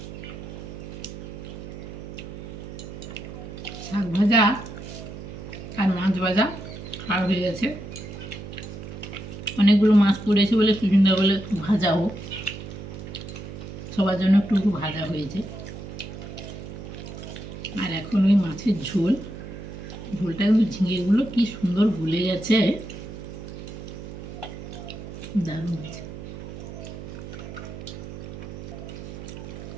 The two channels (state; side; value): noise; right; hum, 10 dB below the sound